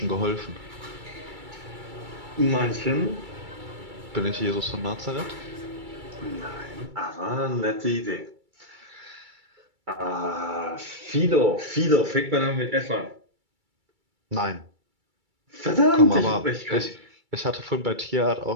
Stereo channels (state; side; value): late; left; 2.3 ms